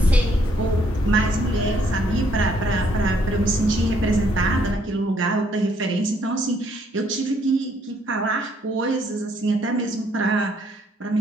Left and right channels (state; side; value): normal; both; correlation 0.68